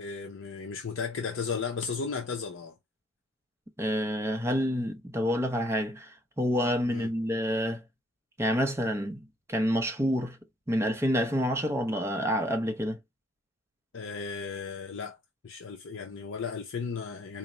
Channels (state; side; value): normal; both; correlation 0.64